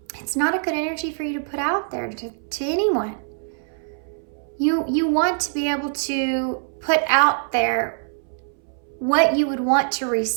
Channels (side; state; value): left; silent; 62 dB below the other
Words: it's not a good energy for you to put out there to anyone. You want to be able to put out there what you would want to